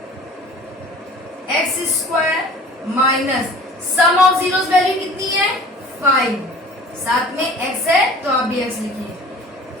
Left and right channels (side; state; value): both; normal; correlation 0.46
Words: x square minus sum of zeros value कितनी है, 5, साथ में एक्स है तो आप भी एक्स लिखिए,